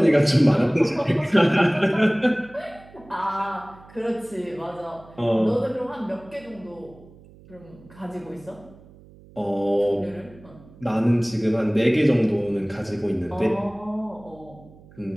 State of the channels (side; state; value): right; noise; hum, 23 dB below the sound